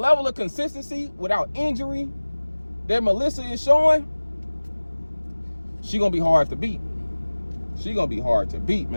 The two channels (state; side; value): inverted; both; correlation -1.00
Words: of consistency without injury that Melissa is showing, she gonna be hard to beat. She gonna be hard to beat,